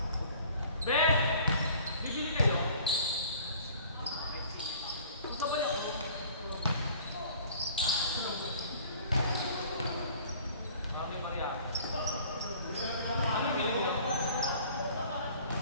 Be! Bibili kayo? Gusto ba yun? Sabi Maria. Ano bibili niyo?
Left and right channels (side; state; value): both; inverted; correlation -0.51